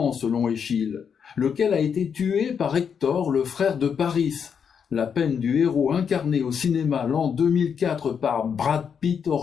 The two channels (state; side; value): quieter; right; 7.0 dB